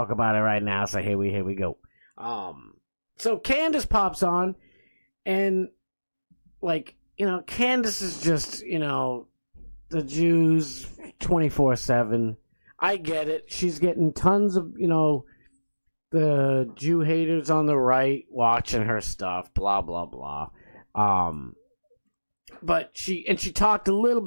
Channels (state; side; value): inverted; both; correlation -1.00